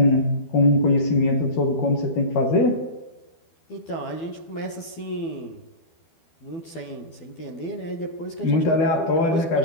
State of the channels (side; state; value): right; late; 12 ms